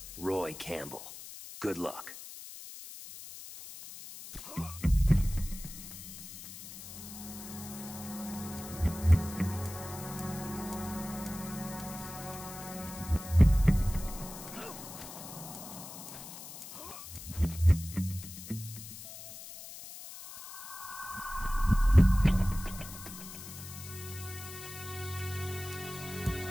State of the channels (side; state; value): left; noise; hiss, 12 dB below the sound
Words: Roy Campbell. Good luck.